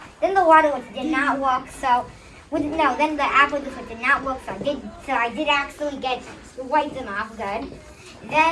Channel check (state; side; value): identical; both; correlation 1.00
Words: Then the water did not work, so then the apple juice did not work, so I did actually wipe them off good.